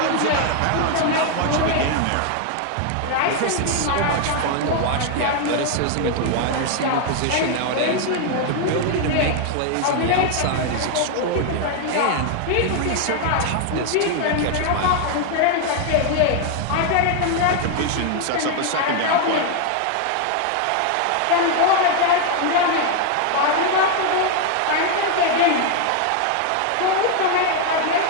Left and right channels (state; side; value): different; both; correlation 0.01